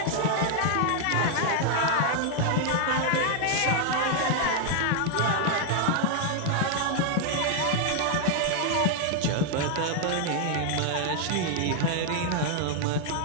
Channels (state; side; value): different; both; correlation 0.00